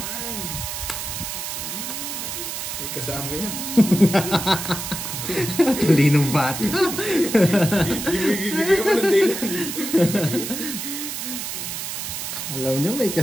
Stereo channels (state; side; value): noise; right; hiss, 5 dB below the sound